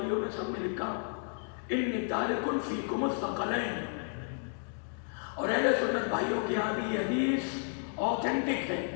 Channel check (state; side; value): silent; right; 56 dB below the other